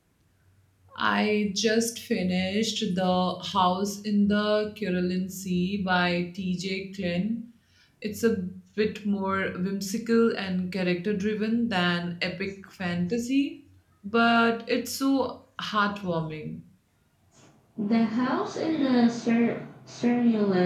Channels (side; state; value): both; identical; correlation 1.00